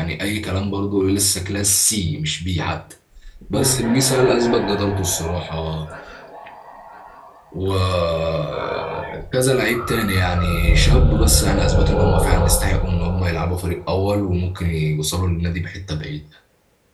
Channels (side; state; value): both; identical; correlation 1.00